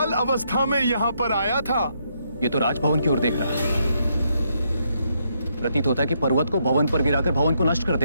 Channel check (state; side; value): inverted; both; correlation -0.76